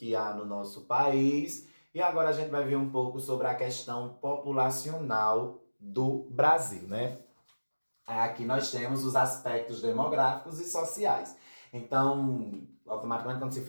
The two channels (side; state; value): both; inverted; correlation -1.00